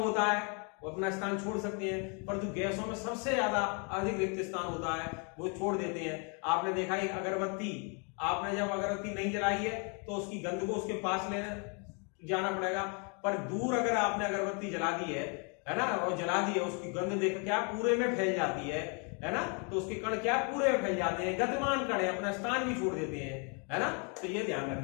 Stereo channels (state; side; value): quieter; right; 36.2 dB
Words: है, वो अपना स्थान छोड़ सकते हैं, परंतु गैसों में सबसे ज्यादा अधिक रिक्त स्थान होता है, वो छोड़ देते हैं। आपने देखा है अगरबत्ती, आपने जब अगरबत्ती नहीं जलाई है तो उसकी गंध को उसके पास लेने जाना पड़ेगा, पर दूर अगर आपने अगरबत्ती जला दी है ना, और जला दी है, उसकी गंध देख क्या पूरे में फैल जाती है ना। तो उसके कण क्या पूरे में फैल जाते हैं, गतिमान कण है, अपना स्थान भी छोड़ देते हैं, है ना। तो ये ध्यान